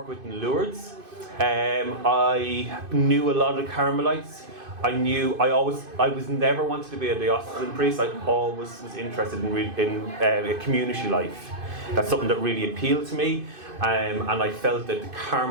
with in Lourdes. I knew a lot of Carmelites. I was never wanted to be a diocesan priest. I always was interested in community life. That's something that really appealed to me. And I felt that the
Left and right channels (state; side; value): late; left; 2.5 ms